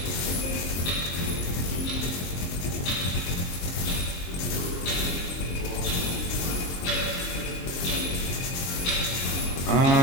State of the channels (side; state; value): right; late; 23 ms